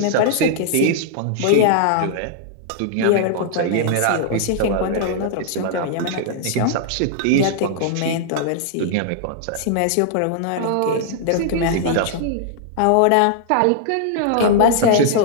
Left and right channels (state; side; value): different; both; correlation -0.01